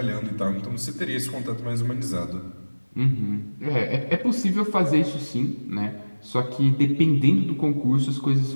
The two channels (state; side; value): inverted; both; correlation -1.00